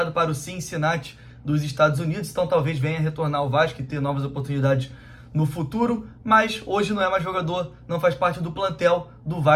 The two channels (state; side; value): identical; both; correlation 1.00